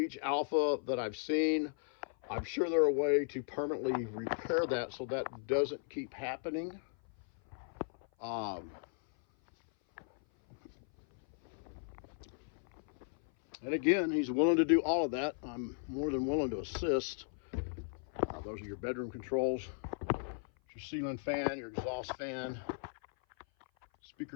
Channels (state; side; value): silent; right; 54 dB below the other